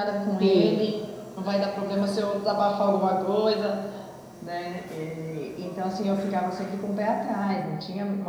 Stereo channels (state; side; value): identical; both; correlation 1.00